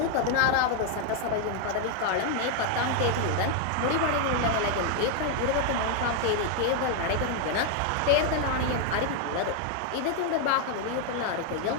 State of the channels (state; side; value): different; both; correlation 0.00